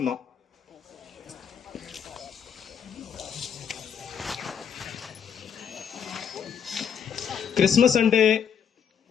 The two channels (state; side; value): quieter; right; 7.7 dB